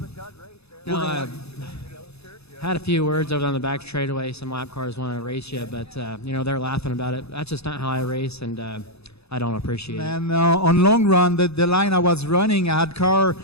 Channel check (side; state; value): right; late; 0.79 ms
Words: You know, I had a few words over on the back straightaway. Some lap cars want to race you, but you know, they're laughing about it. That's just not how I race, and I don't appreciate it. And on long run, the line I was running, I had